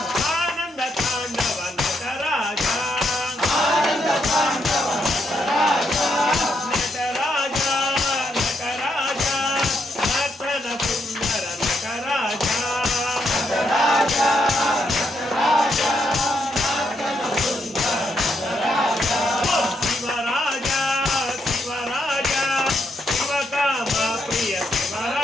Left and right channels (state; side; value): normal; both; correlation 0.78